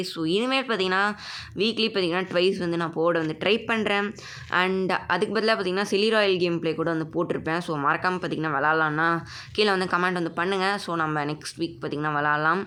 ஸோ இனிமேல் பார்த்திங்கன்னா வீக்லி பார்த்திங்கன்னா ட்வைஸ் வந்து நான் போட வந்து ட்ரை பண்ணுறேன். அண்ட் அதுக்கு பதிலாக பார்த்திங்கன்னா செலிராயல் கேம் ப்ளே கூட வந்து போட்டிருப்பேன். ஸோ மறக்காமல் பார்த்திங்கன்னா விளாட்லான்னா கீழே வந்து கமெண்ட் வந்து பண்ணுங்கள். ஸோ நம்ம நெக்ஸ்ட் வீக் பார்த்திங்கன்னா விளாட்லாம்.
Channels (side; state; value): both; identical; correlation 1.00